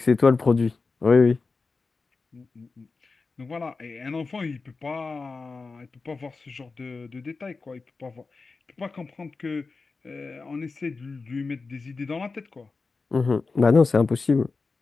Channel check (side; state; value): right; quieter; 4.1 dB